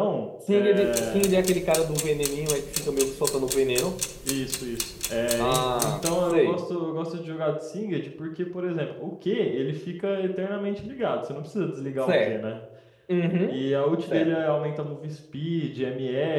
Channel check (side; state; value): both; identical; correlation 1.00